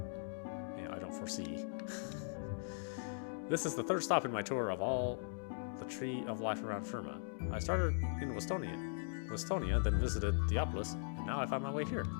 don't foresee. This is the third stop in my tour of all the tree of life around Firma. I started in Westonia, then visited Theopolis, and now I found my way here.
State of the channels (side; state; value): right; silent; digital silence